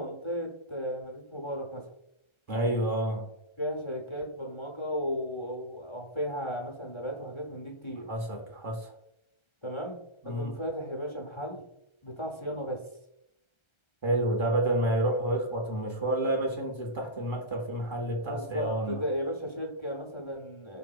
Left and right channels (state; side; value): late; right; 1.3 ms